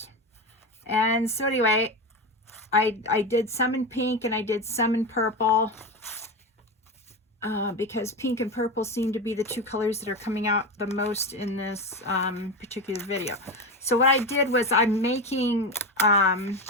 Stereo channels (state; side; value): normal; both; correlation 0.19